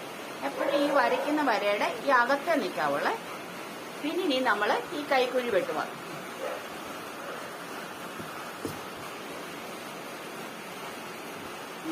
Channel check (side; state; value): both; identical; correlation 1.00